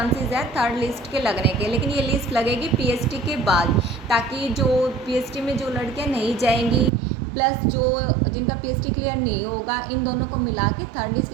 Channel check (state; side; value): drops out; left; at 6.9 s